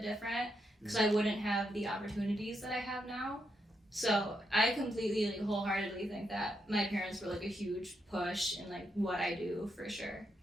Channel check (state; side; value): normal; both; correlation 0.81